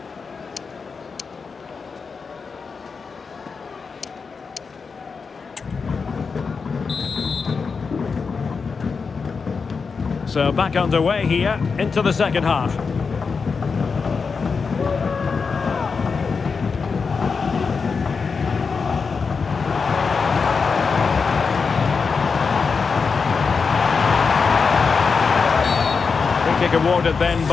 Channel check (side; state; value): right; quieter; 5.2 dB